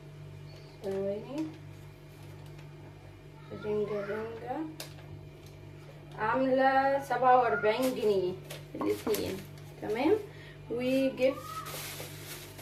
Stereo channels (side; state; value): both; identical; correlation 1.00